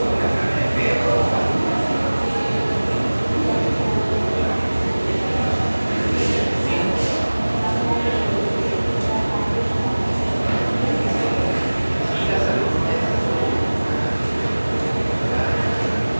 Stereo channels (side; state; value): both; inverted; correlation -1.00